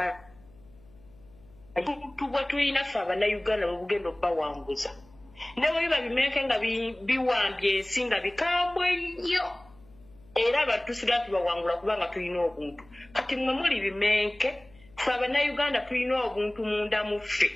tubwe tulina ffe abannayuganda bwe bugenda obbawanguza ne bwe biba bimenke nga biwambye ensi nga bikambwe nnyo era abatusira tubawangula kubanga tulina obuntu kati mmwe muli bimenke ffe abannayuganda tulina obuntu munda mu ffe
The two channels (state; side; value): noise; left; hum, 27 dB below the sound